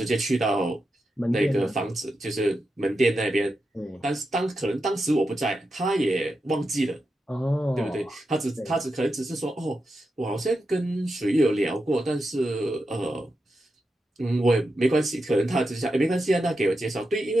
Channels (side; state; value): both; normal; correlation 0.88